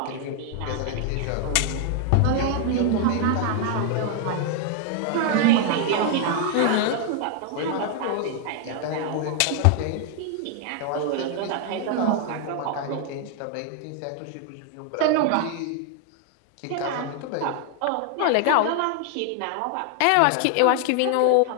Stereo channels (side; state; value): both; different; correlation 0.00